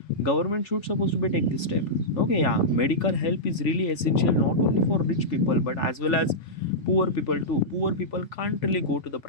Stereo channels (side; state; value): right; late; 3.4 ms